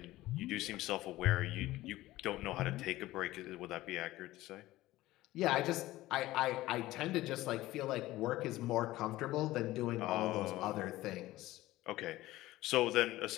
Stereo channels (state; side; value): quieter; right; 16.9 dB